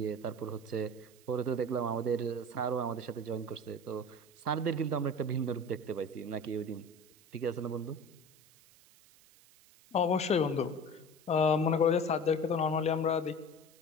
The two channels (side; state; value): right; noise; hiss, 26 dB below the sound